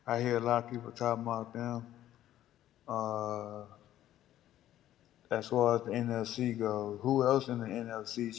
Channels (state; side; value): quieter; right; 12.7 dB